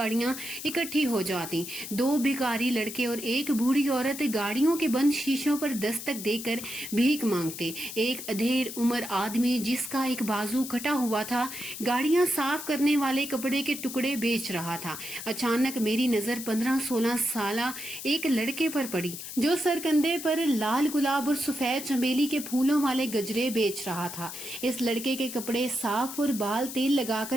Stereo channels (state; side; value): noise; left; hiss, 9 dB below the sound